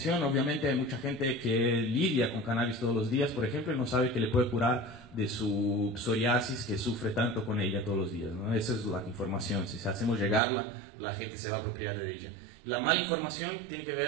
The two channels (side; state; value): left; drops out; at 10.4 s